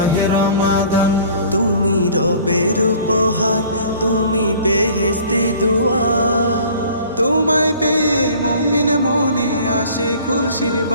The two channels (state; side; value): inverted; both; correlation -0.50